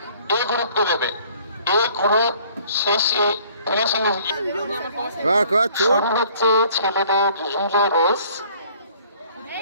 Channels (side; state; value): both; inverted; correlation -0.56